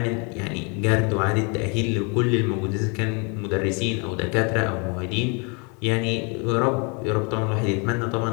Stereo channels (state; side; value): quieter; right; 33.4 dB